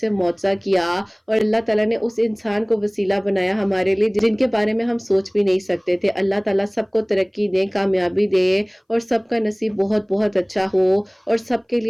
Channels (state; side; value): identical; both; correlation 1.00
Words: معجزہ کیا، اور اللہ تعالیٰ نے اس انسان کو وسیلہ بنایا ہمارے لیے جن کے بارے میں ہم سوچ بھی نہیں سکتے تھے۔ اللہ تعالیٰ سب کو ترقی دے، کامیابی دے، اور سب کا نصیب بہت بہت اچھا ہو، اور سب کے